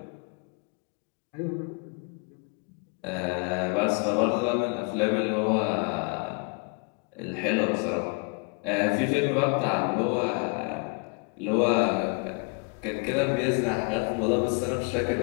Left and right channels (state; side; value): quieter; right; 34.5 dB